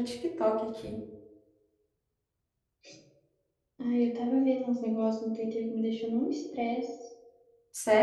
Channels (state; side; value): identical; both; correlation 1.00